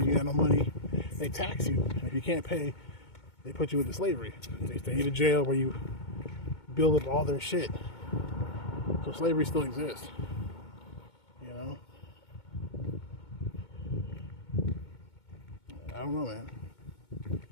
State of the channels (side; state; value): right; late; 2.2 ms